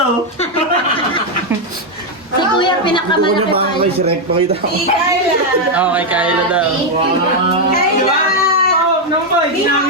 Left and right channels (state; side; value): normal; both; correlation 0.02